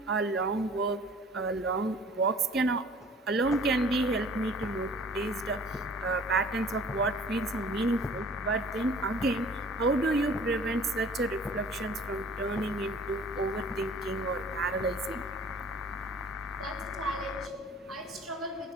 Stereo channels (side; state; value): both; normal; correlation 0.49